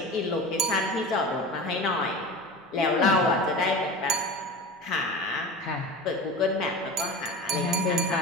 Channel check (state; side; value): normal; both; correlation 0.32